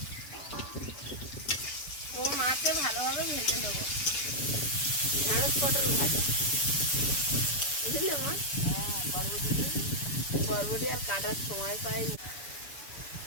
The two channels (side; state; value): right; late; 7.0 ms